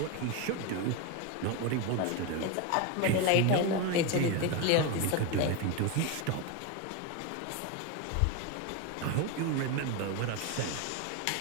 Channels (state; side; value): different; both; correlation 0.03